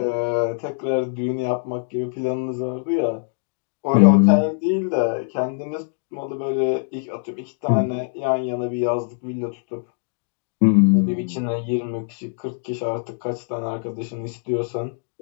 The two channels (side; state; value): right; silent; 63 dB below the other